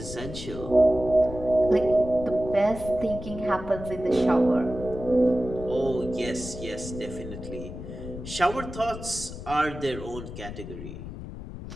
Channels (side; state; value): left; noise; rumble, 10 dB below the sound